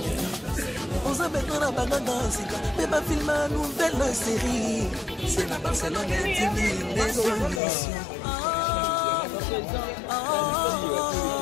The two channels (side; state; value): right; drops out; at 7.6 s